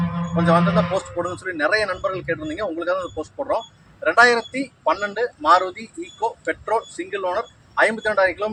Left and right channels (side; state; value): both; identical; correlation 1.00